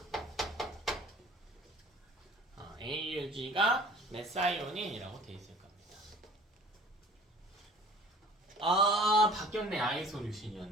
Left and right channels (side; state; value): both; normal; correlation 0.49